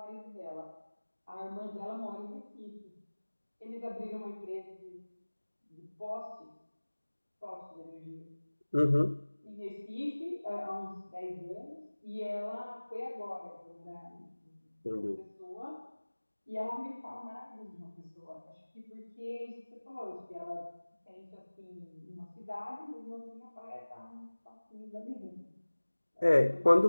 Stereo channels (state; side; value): inverted; both; correlation -1.00